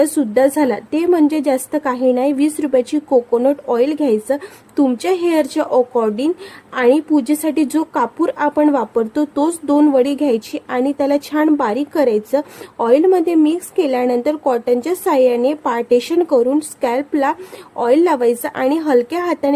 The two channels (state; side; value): identical; both; correlation 1.00